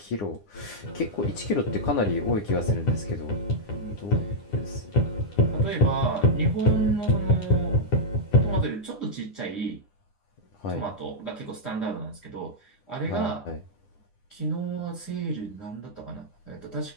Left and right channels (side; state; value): right; late; 9.9 ms